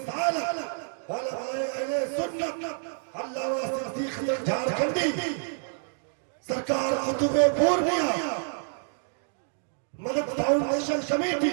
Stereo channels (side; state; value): left; silent; digital silence